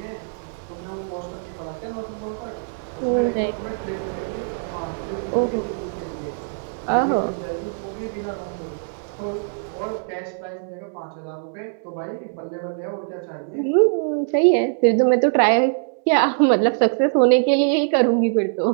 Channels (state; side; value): silent; left; digital silence